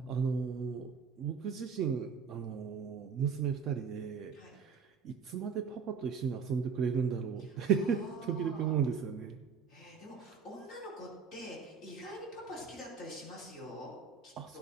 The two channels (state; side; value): quieter; left; 5.9 dB